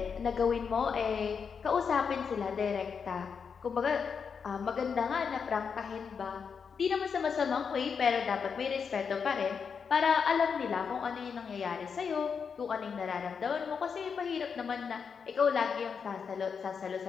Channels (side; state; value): right; quieter; 6.2 dB